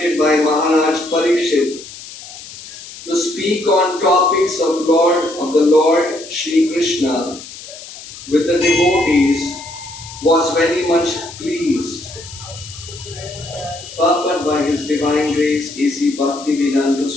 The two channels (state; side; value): noise; left; hiss, 15 dB below the sound